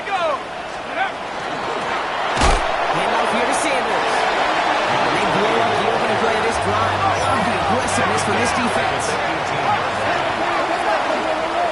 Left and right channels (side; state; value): both; identical; correlation 1.00